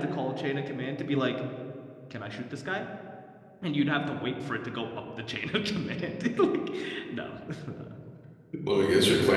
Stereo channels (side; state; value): both; identical; correlation 1.00